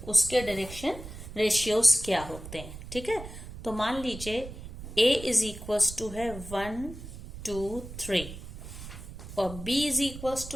उसके डायरेक्शन रेशियोज क्या होते हैं। ठीक है, तो मान लीजिए A इज इक्वल्स टू है 1 2 3 और B इज इक्वल्स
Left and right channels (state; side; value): noise; right; rumble, 12 dB below the sound